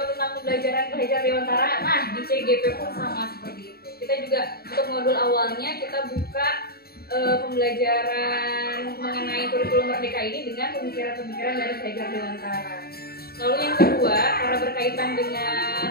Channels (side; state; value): right; late; 0.45 ms